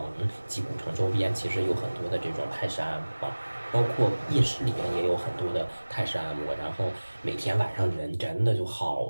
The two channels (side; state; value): both; inverted; correlation -1.00